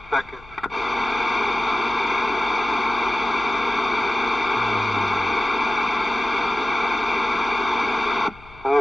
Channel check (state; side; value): noise; left; hum, 22 dB below the sound